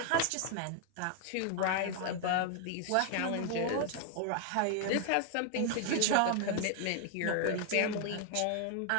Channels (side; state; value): both; different; correlation 0.00